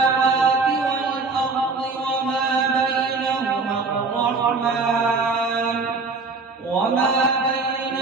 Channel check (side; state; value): left; quieter; 4.0 dB